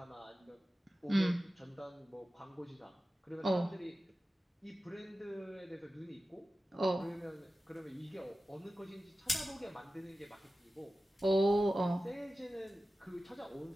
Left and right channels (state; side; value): normal; both; correlation 0.95